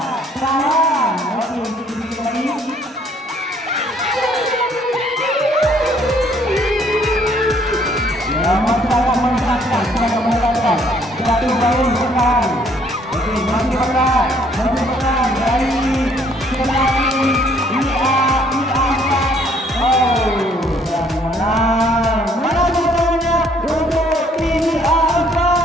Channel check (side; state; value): both; normal; correlation 0.63